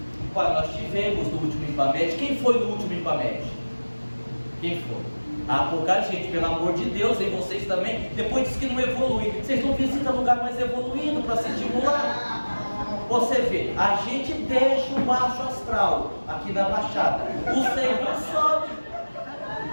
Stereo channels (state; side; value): inverted; both; correlation -1.00